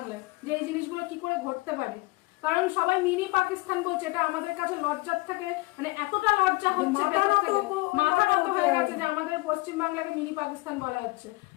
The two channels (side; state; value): right; quieter; 22.9 dB